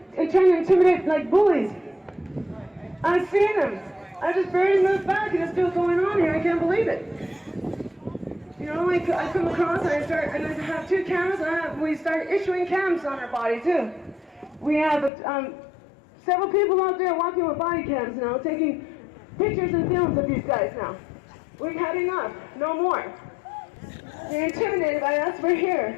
trying to intimidate like bullies. I've seen them. I just barely moved back and it's still going on here. I can't believe it. I come across and I have 2 cameras and we start issuing cams on our body too. We have several people out there walking with body cams now, taking pictures and films of these guys now. We've had enough. No more. They're intimidated by us. We're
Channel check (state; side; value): drops out; right; at 15.1 s